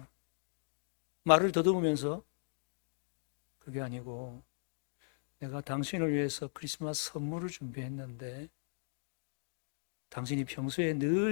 말을 더듬으면서 그게 아니고 내가 당신을 위해서 크리스마스 선물을 준비했는데 당신이 평소에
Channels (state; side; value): silent; right; digital silence